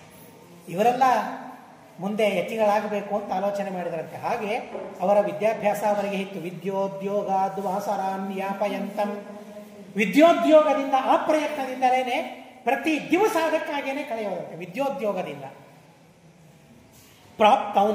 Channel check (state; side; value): identical; both; correlation 1.00